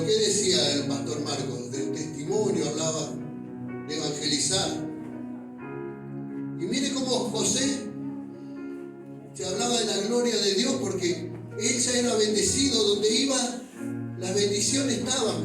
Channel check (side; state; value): both; identical; correlation 1.00